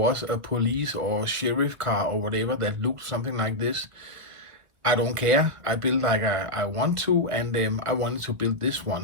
a police or sheriff car or whatever that looked something like this. I don't care. I build like I want to, and I wanted to build this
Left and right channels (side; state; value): left; late; 1.8 ms